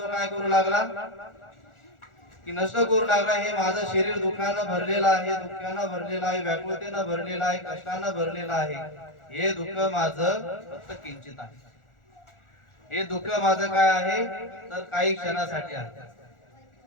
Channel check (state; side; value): late; right; 1.4 ms